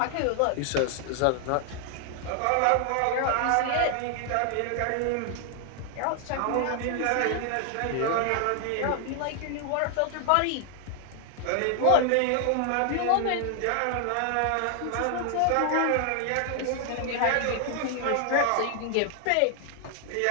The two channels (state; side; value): different; both; correlation 0.00